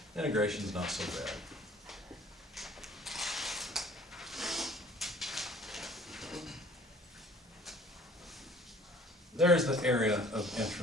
Integration's not so bad. There's the area of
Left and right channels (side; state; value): both; normal; correlation 0.52